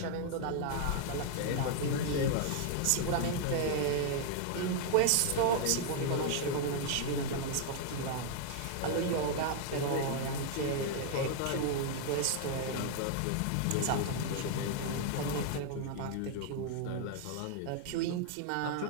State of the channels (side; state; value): both; different; correlation 0.00